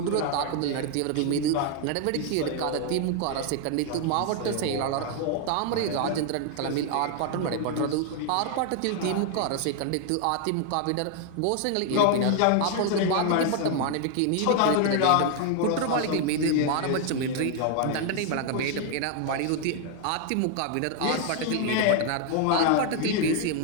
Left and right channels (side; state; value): both; different; correlation 0.00